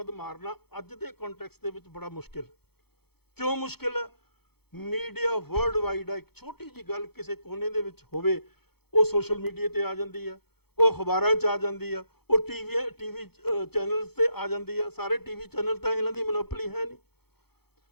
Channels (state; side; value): late; right; 0.96 ms